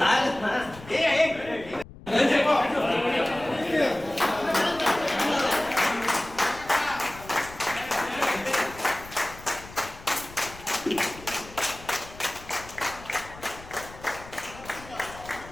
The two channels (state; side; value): noise; left; rumble, 17 dB below the sound